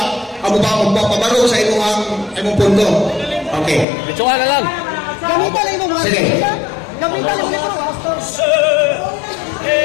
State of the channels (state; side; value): drops out; right; at 3.9 s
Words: pabaro sa imong punto. Okay. Bituan na lang. Gamitan lang mo. Sige. Gamitan lang mo.